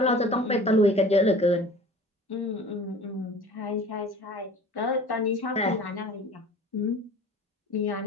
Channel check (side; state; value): both; normal; correlation 0.44